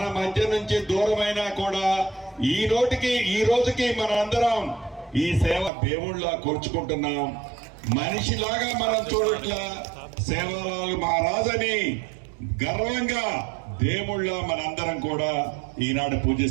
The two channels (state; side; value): drops out; left; at 5.7 s